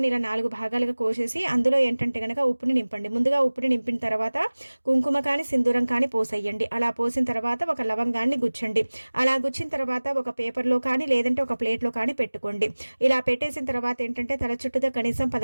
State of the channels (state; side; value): inverted; both; correlation -1.00